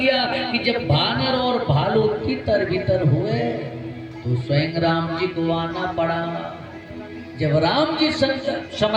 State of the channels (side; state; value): both; identical; correlation 1.00